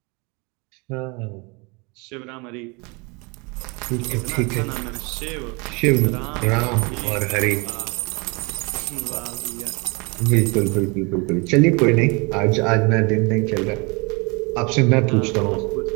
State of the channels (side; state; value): left; quieter; 29.2 dB